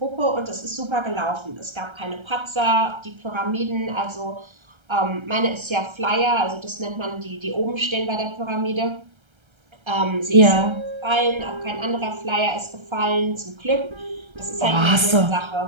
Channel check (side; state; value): left; late; 1.3 ms